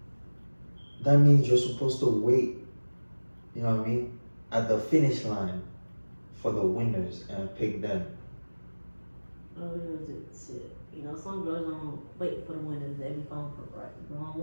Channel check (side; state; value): both; inverted; correlation -1.00